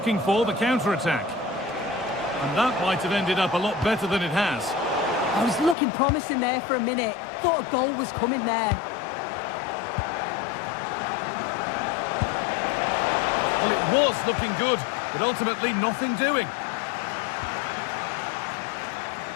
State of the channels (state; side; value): drops out; right; at 5.8 s